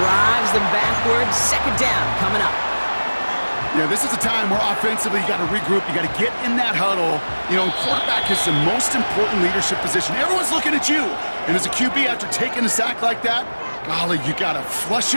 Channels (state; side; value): inverted; both; correlation -1.00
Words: them backwards. Second down coming up. Yeah, this is a time where offensively you got to regroup. You got to get in that huddle. You know, quarterback is the most important leadership position. Everyone's looking at you. And as a QB, after taking a sack like that, golly, you got to flush